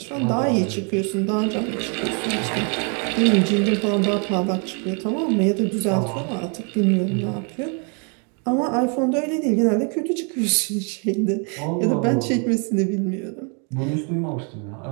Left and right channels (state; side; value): quieter; left; 37.3 dB